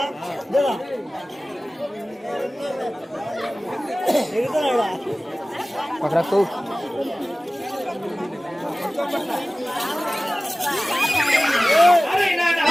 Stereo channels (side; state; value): both; normal; correlation 0.97